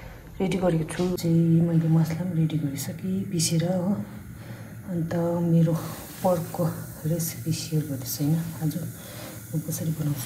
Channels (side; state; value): both; identical; correlation 1.00